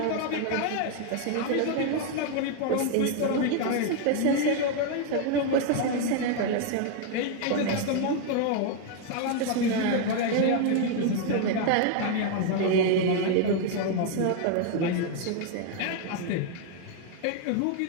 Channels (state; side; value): different; both; correlation 0.00